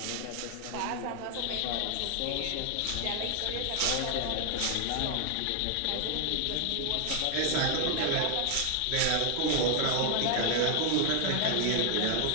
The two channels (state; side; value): different; both; correlation 0.00